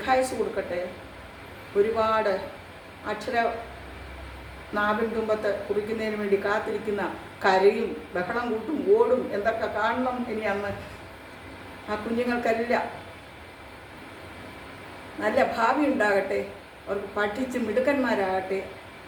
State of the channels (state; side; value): identical; both; correlation 1.00